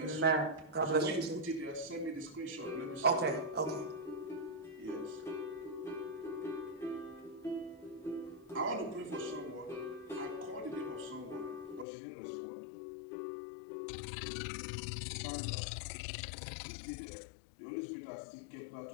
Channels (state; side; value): drops out; right; at 11.9 s